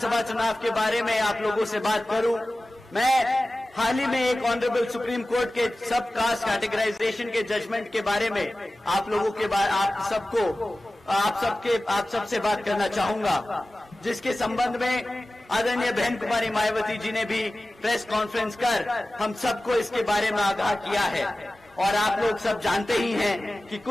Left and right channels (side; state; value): both; normal; correlation 0.96